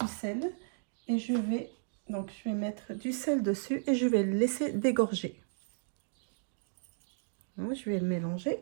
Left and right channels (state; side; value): silent; left; digital silence